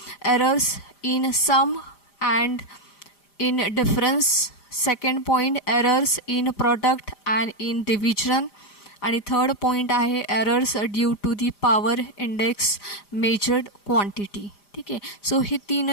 in sum and in difference. Second point errors in product and in division. आणि थर्ड पॉईंट आहे errors due to the power index measured quantity, ठीक आहे. सो हे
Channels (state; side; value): late; right; 5.0 ms